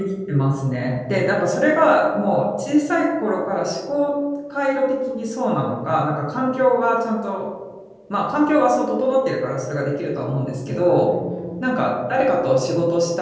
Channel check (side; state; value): both; identical; correlation 1.00